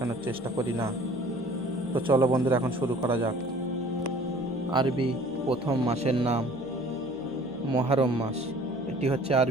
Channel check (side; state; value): left; noise; hum, 21 dB below the sound